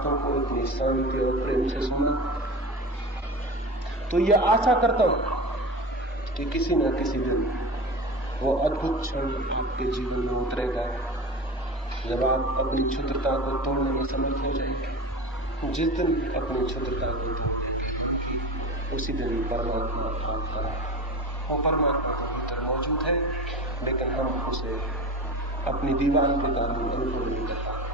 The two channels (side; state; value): both; normal; correlation 0.30